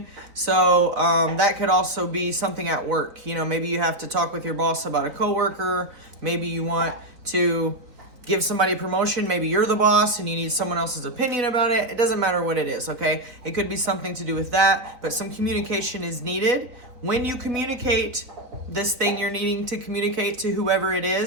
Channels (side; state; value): left; late; 3.8 ms